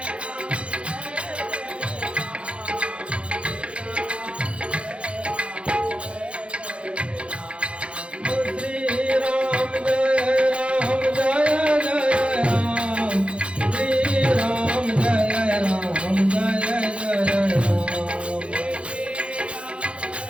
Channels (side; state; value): left; late; 0.059 ms